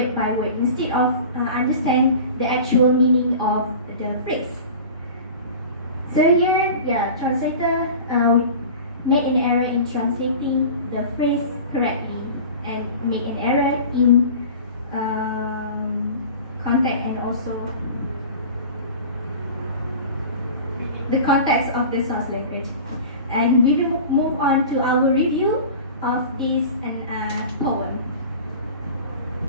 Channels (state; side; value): inverted; both; correlation -0.37